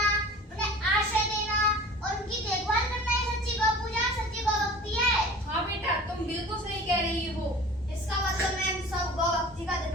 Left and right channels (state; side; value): normal; both; correlation 0.42